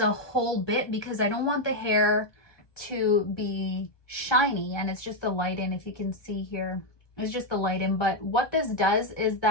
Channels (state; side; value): late; right; 1.2 ms